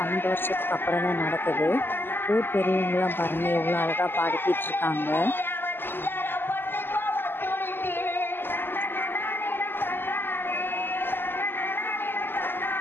12 வருஷத்துக்கு அப்புறம் தான் நடக்குது. ஊர் பெரியவங்களாம் பாருங்கள் எவ்வளோ அழகாக பாடிக்கிட்டு இருக்காங்க.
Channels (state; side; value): late; right; 0.10 ms